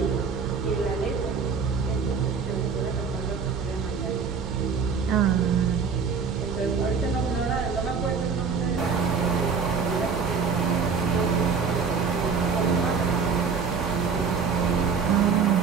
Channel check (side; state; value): left; quieter; 5.7 dB